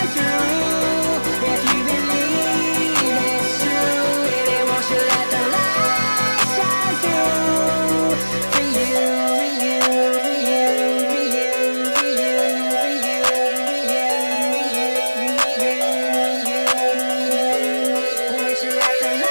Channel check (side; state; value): both; inverted; correlation -1.00